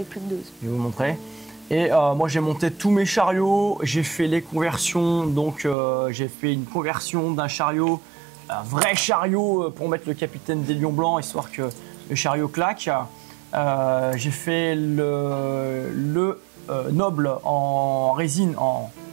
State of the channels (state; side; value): drops out; left; at 5.8 s